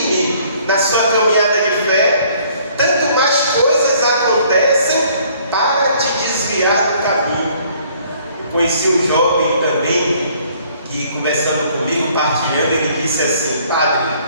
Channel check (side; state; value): both; inverted; correlation -0.59